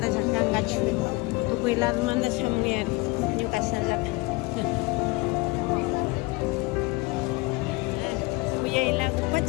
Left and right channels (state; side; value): quieter; right; 24.4 dB